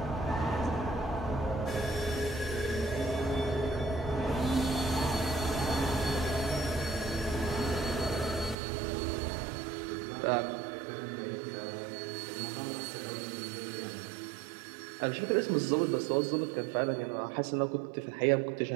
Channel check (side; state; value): left; drops out; at 8.6 s